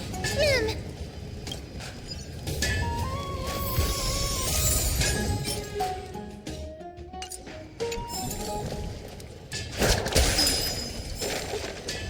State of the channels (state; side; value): identical; both; correlation 1.00